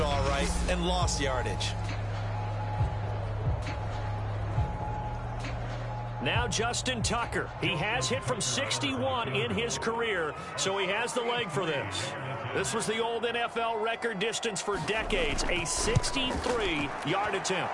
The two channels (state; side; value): identical; both; correlation 1.00